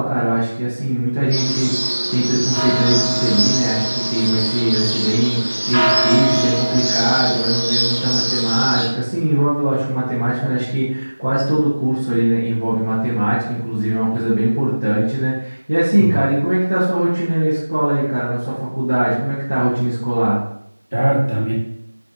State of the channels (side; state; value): both; inverted; correlation -1.00